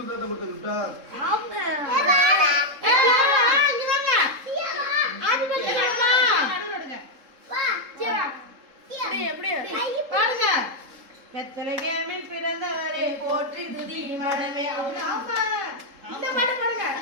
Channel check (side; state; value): left; late; 3.7 ms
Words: தாத்தா கொடுத்துட்டா. ஆமா. இங்க வாங்க. ஹாப்பி பர்த்டே அம்மா. நடுவுடுங்க. வா. ஜீவா. எப்படி பாருங்க. பெத்லகேமில் பிறந்தவரே போற்றி துதி மடமே. ஆமா. இந்த பாட்டு பாருங்க.